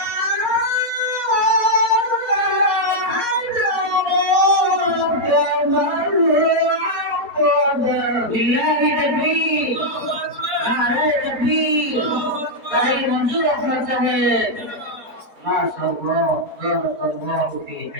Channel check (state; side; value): late; left; 4.1 ms